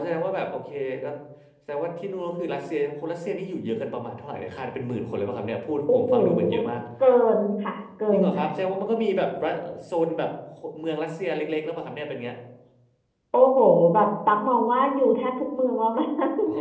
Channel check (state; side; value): identical; both; correlation 1.00